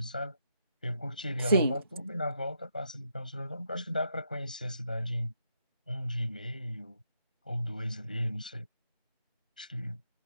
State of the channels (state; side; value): inverted; both; correlation -0.79